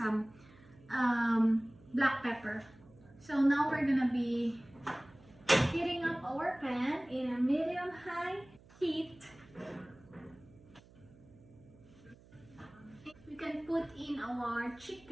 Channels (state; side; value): noise; right; hum, 24 dB below the sound